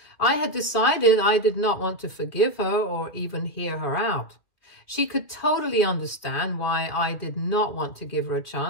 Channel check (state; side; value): late; right; 2.4 ms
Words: I had decided I did not want to forgive her or even hear her out. She could totally understand why I did not want to give her a